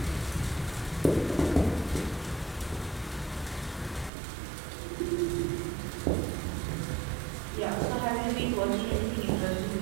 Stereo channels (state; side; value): drops out; left; at 4.1 s